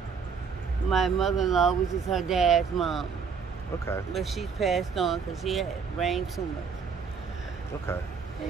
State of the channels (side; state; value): left; quieter; 5.9 dB